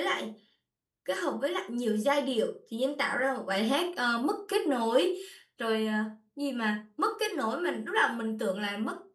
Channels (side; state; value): both; identical; correlation 1.00